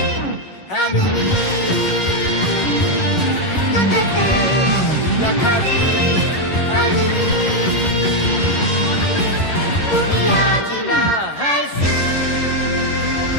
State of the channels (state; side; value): late; right; 11 ms